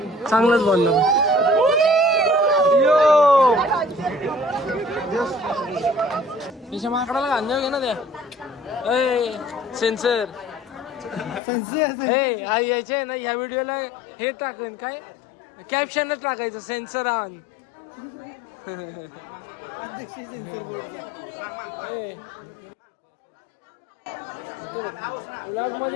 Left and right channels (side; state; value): right; drops out; at 11.4 s